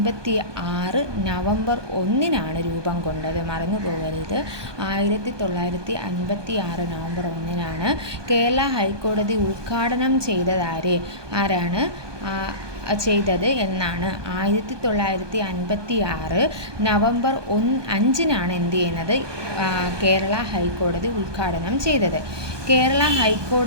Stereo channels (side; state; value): left; late; 1.2 ms